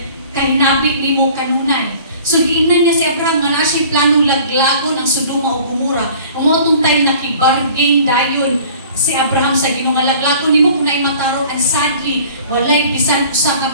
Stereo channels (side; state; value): both; inverted; correlation -0.48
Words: kahinabi nimo kanunay. So giingnan niya si Abraham nga na siya planong laglagon ang Sodoma o Gomora. Umotong time nakibargain dayon si Abraham sa Ginoo nga laglagon nimo kung naay matarong, and sadly walay bisan usa nga